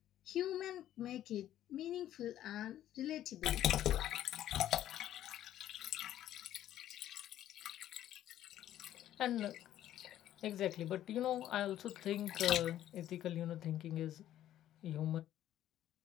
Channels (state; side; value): quieter; right; 12.3 dB